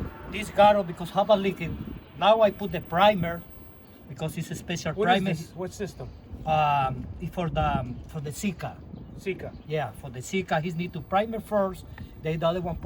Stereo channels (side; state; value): both; identical; correlation 1.00